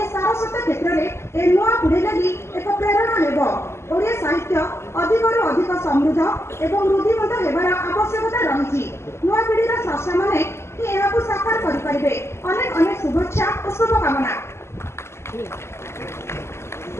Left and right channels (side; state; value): right; late; 0.13 ms